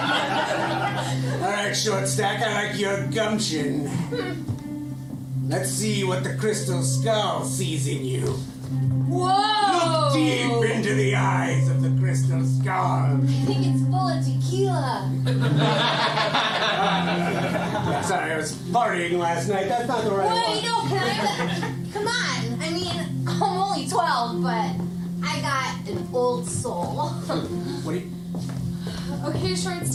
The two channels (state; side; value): identical; both; correlation 1.00